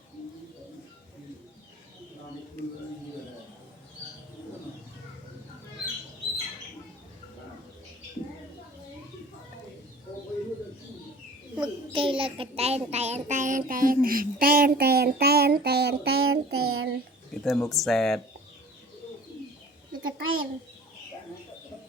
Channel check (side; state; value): both; normal; correlation 0.45